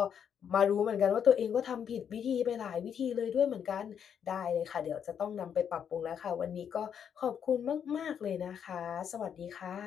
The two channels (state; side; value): quieter; right; 8.1 dB